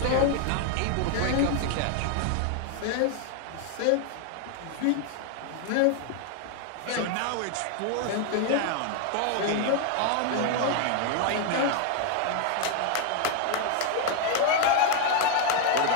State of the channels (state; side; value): different; both; correlation 0.00